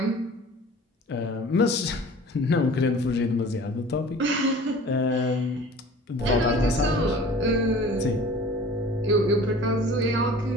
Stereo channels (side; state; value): both; normal; correlation 0.44